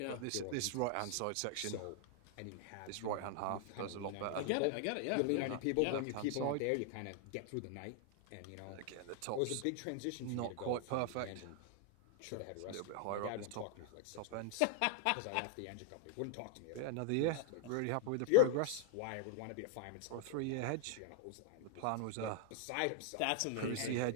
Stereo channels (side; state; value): both; different; correlation 0.00